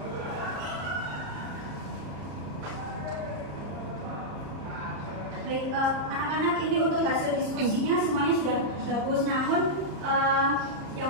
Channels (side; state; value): left; late; 34 ms